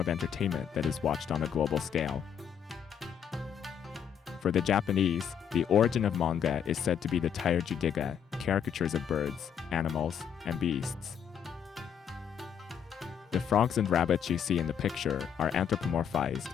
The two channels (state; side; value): quieter; right; 8.0 dB